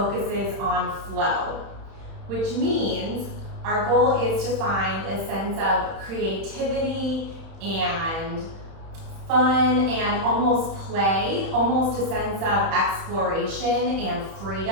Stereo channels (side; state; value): left; late; 31 ms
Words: on flow, which means our goal is to find a sense of creativity and fun and almost play, almost a sense of exploration and